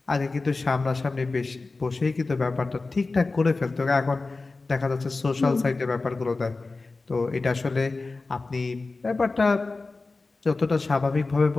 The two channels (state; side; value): quieter; right; 3.6 dB